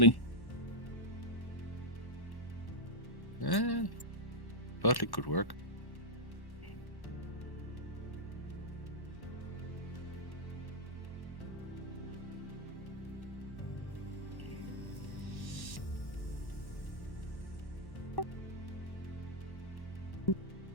Totally could work.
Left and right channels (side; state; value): right; late; 1.1 ms